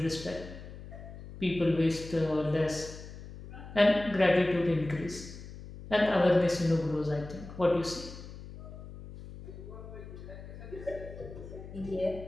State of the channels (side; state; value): left; noise; hum, 13 dB below the sound